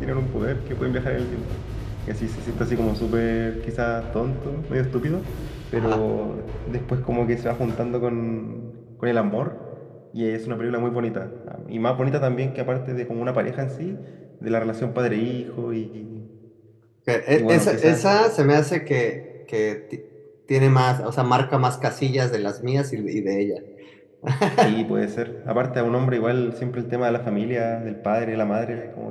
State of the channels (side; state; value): both; identical; correlation 1.00